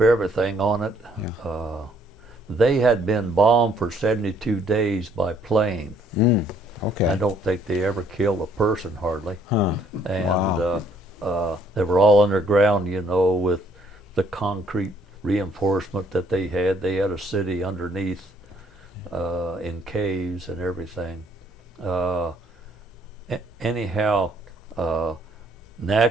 everything on it. Yeah. They had been bombed for 72 days by plane. Okay. I don't think they ever killed a person hardly. Huh. And they were all underground, you know, with the concrete reinforcement that they had. They had a city underneath in caves and everything. Anyhow,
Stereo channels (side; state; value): both; normal; correlation 0.65